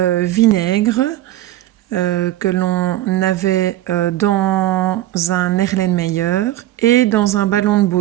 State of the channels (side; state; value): left; quieter; 14.5 dB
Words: vinaigre que l'on avait dans un Erlenmeyer et dans un ballon de